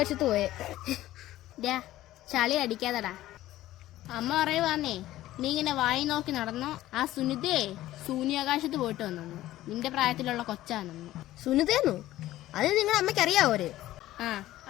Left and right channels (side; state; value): right; quieter; 15.0 dB